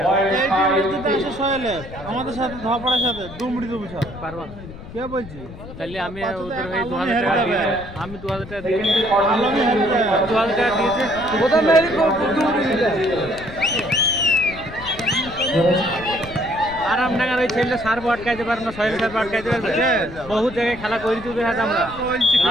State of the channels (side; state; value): left; noise; rumble, 14 dB below the sound